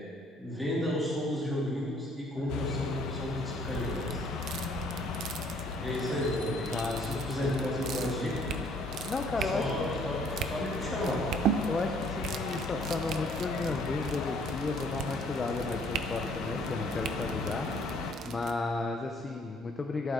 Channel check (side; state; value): both; normal; correlation 0.61